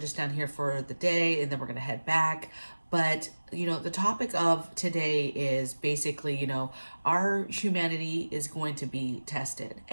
down here for the day, and then we're gonna head back. But, the topic of today is basically, our humanity is going to be tested.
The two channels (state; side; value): inverted; both; correlation -1.00